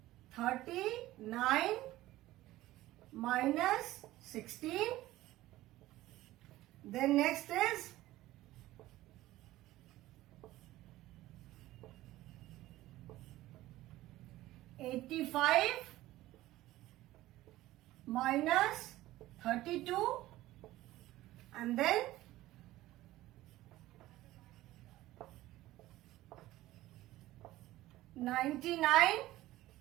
39 minus 16. Then next is 85 minus 32, and then 99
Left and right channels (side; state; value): left; quieter; 16.3 dB